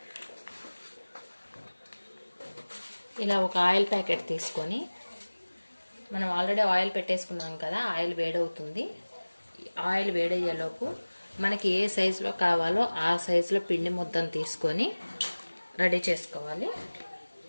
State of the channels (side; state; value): both; inverted; correlation -1.00